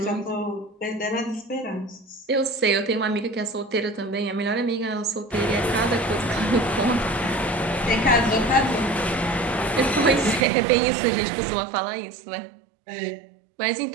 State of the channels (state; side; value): drops out; left; at 10.5 s